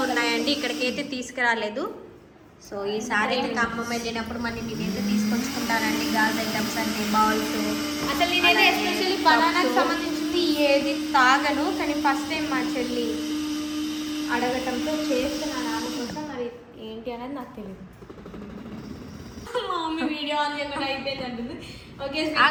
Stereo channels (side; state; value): both; identical; correlation 1.00